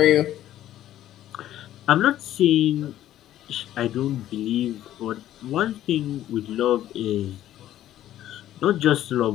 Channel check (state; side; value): quieter; right; 12.7 dB